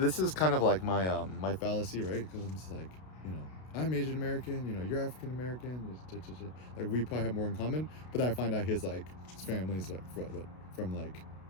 is kind of like my my fallacy, right? Because I'm just like, I'm Asian American, you're African American, like we probably have more in common. But then I find out his family is like from like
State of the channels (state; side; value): late; right; 32 ms